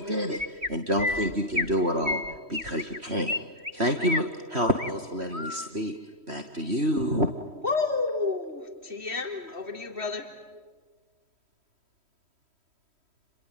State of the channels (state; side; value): late; left; 3.1 ms